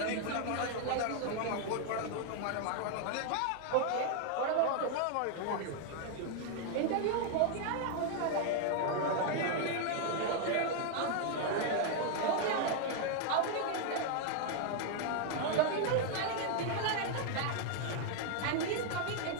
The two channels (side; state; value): both; different; correlation 0.00